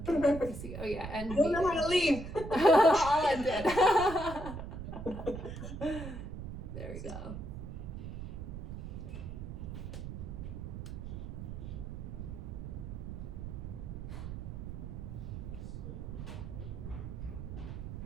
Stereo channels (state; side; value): noise; right; rumble, 7 dB below the sound